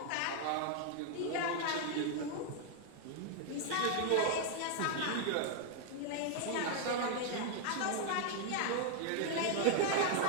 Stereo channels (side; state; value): both; different; correlation 0.00